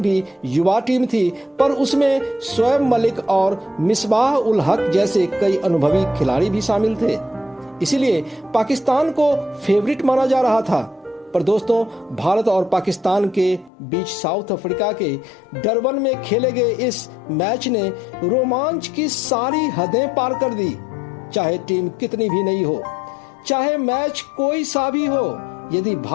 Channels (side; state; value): right; drops out; at 13.7 s